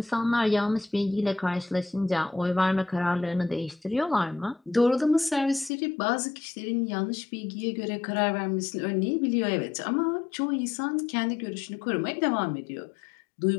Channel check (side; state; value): right; drops out; at 5.7 s